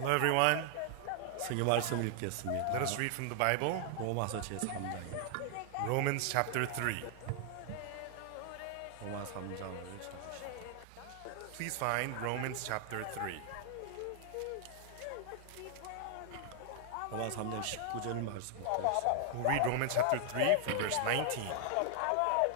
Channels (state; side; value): different; both; correlation 0.00